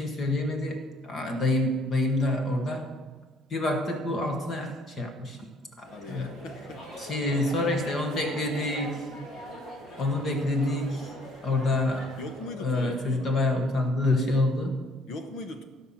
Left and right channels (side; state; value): both; normal; correlation 0.61